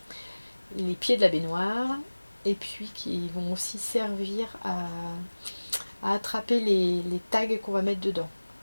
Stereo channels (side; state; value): both; inverted; correlation -1.00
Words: pieds de la baignoire. Et puis qui vont aussi servir à attraper les tags qu'on va mettre dedans.